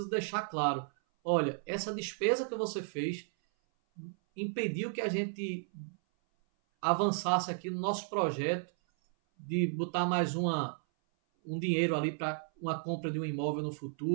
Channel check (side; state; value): left; silent; 55 dB below the other